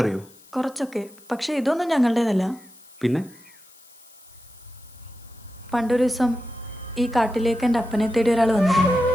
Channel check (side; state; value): left; noise; hiss, 26 dB below the sound